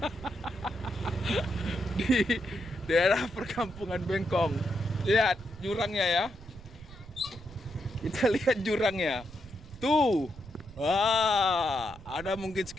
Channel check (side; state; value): right; noise; rumble, 18 dB below the sound